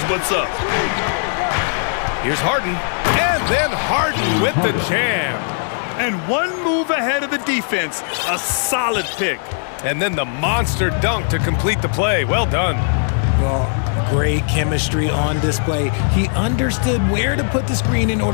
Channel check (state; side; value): silent; right; digital silence